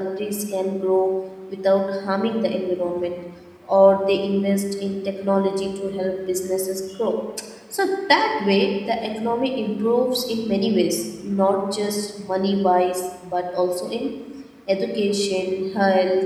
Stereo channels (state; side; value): identical; both; correlation 1.00